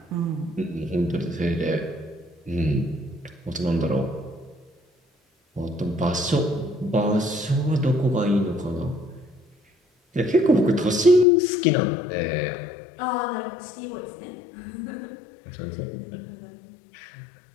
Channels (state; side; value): drops out; right; at 11.2 s